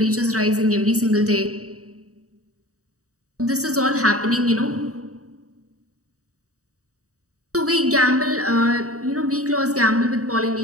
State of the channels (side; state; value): left; late; 0.66 ms